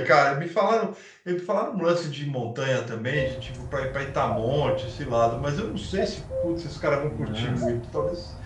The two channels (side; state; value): both; identical; correlation 1.00